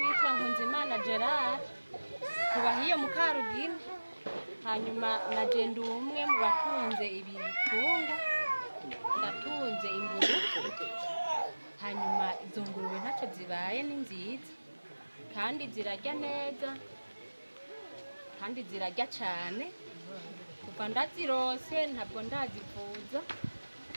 Nkunzimana Gerard, tubahiye mu Karugina. Hanyuma naje ndi umwe mu batunze ibitungwa, ndatunze ingurube. Hanyuma izo ngurube ntacyo zibaye, ni nziza kandi zirarya neza kandi zirarya cyane. Kuva ndazirose ntabwo ndazivuza,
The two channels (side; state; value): both; inverted; correlation -1.00